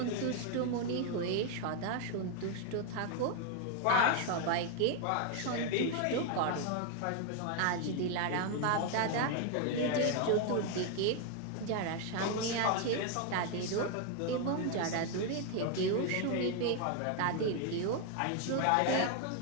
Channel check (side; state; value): both; different; correlation 0.01